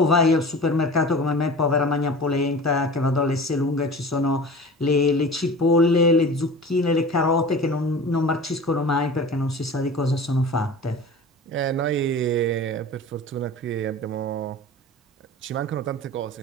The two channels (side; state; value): both; normal; correlation 0.37